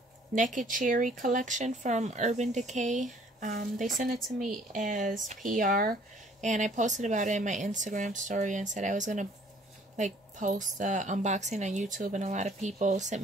Naked Cherry collection from Urban Decay. They sent it to me as PR and I posted about it in my Instagram story and said I was gonna post unboxing on YouTube, and a lot of people sent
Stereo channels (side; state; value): both; normal; correlation 0.58